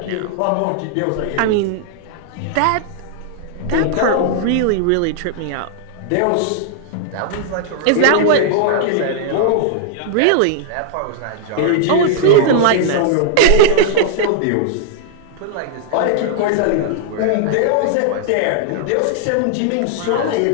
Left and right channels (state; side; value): different; both; correlation -0.01